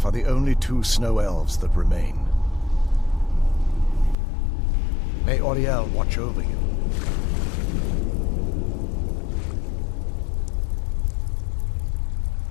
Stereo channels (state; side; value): drops out; right; at 4.2 s